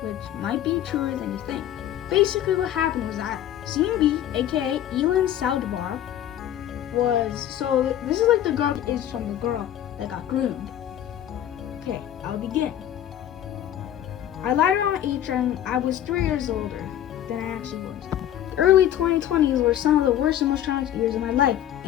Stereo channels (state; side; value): quieter; right; 11.4 dB